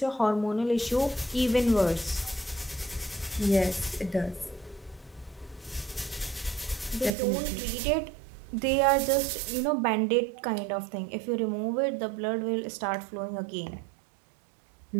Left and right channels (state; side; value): drops out; left; at 7.1 s